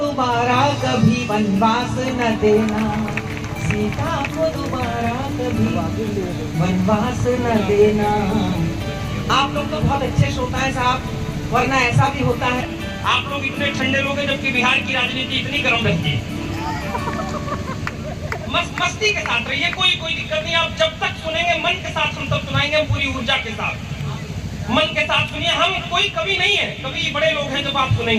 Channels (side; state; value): both; identical; correlation 1.00